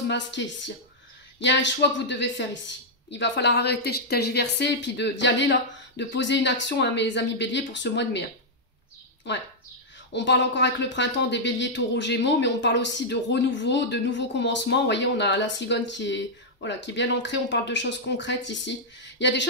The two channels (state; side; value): normal; both; correlation -0.06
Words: masquées ici. Il y a un choix que vous devez faire ici. Il va falloir arrêter de tergiverser et puis d'y aller là, de poser une action à mes amis béliers pour ce mois de mai. Hein. Ouais. On parle encore avec le printemps des béliers, taureaux, gémeaux, mais on parle aussi de renouveau, de nouveaux commencements. Vous voyez, on a la cigogne qui est, voilà, qui est bien ancrée. On parle de choses concrètes ici. Il y a des